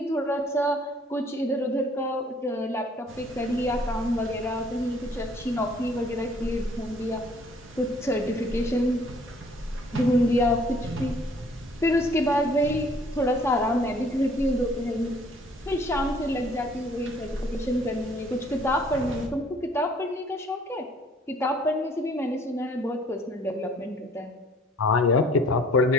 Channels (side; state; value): both; normal; correlation 0.58